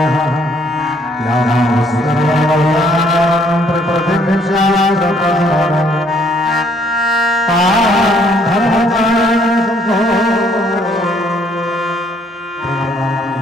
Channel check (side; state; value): both; normal; correlation 0.65